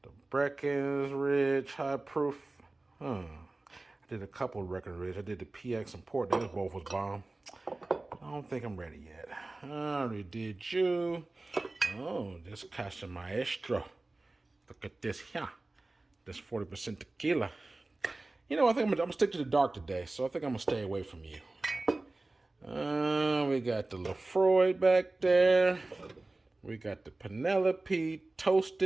The Breckenridge High Proof. I did a couple of Breckenridge. I did the PX and Port. Those both was bomb. I don't think I'm ready yet. I already did you. Oh, this Casa Maestro. Look at this here. This 40% tequila. You know, I think I'm gonna stick to the dark today, so I think I'm gonna stay away from you. We got the Lefroy back there. We got the Penelope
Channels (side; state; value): left; quieter; 3.0 dB